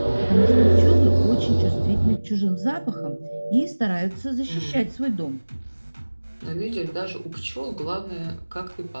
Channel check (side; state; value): both; inverted; correlation -1.00